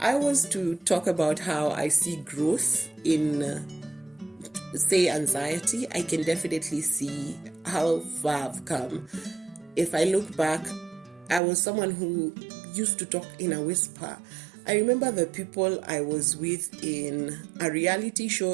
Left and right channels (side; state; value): left; drops out; at 11.4 s